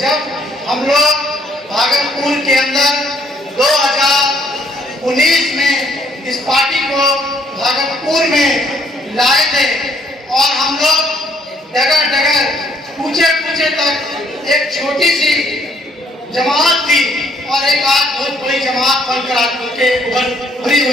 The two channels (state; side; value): normal; both; correlation 0.66